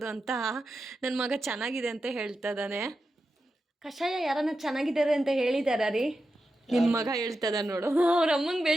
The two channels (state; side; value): normal; both; correlation 0.89